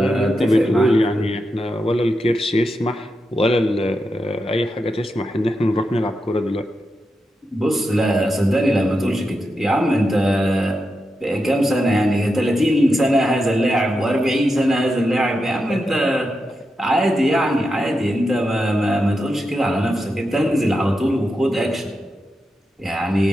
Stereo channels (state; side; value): normal; both; correlation 0.87